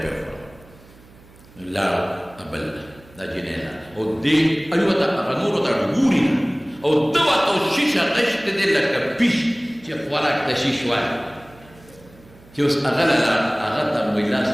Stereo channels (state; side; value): noise; right; hum, 25 dB below the sound